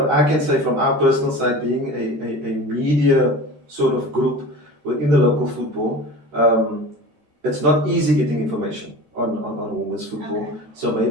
I can say from our personal side, being a media sort of group within the local football, it's not easy getting information on women's football. Okay. So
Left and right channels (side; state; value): left; late; 13 ms